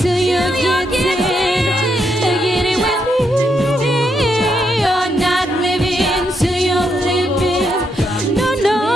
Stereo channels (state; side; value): normal; both; correlation 0.79